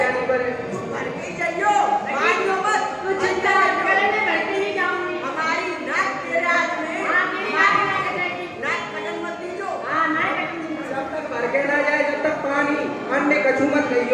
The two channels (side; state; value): both; identical; correlation 1.00